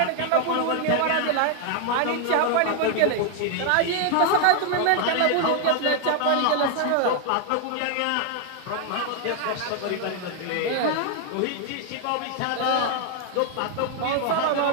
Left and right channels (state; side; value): different; both; correlation 0.00